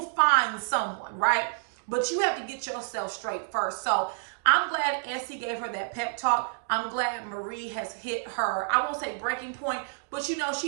find someone, right? But you have to get yourself straight first. So I'm glad Essie gave her that pep talk. I'm glad Marie has hit her, I won't say breaking point, but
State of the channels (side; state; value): left; silent; digital silence